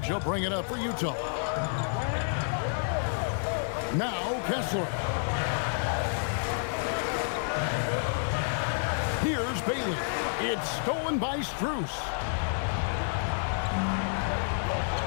He'll bring it up for Utah. Now Kessler. Here's Bailey. It's stolen by Strus.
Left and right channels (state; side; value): silent; right; digital silence